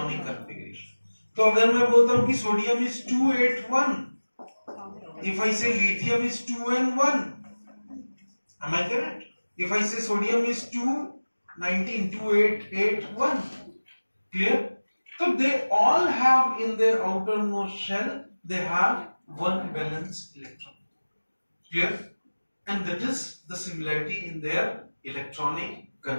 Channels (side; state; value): both; inverted; correlation -1.00